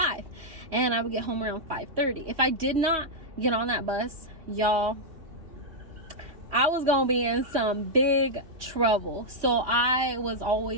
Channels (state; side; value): late; left; 3.1 ms